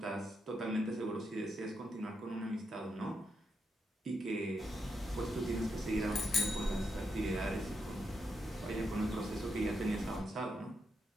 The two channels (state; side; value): normal; both; correlation 0.82